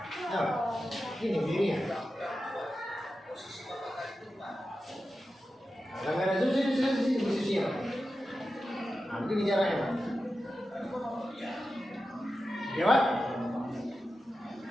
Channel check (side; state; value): both; normal; correlation 0.92